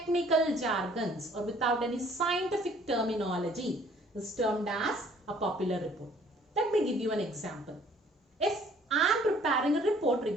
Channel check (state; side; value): normal; both; correlation 0.58